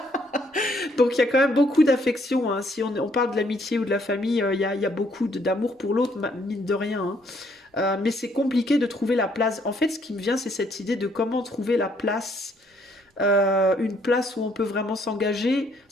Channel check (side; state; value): both; normal; correlation 0.68